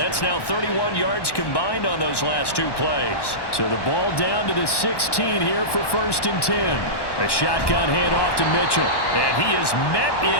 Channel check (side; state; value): right; late; 1.1 ms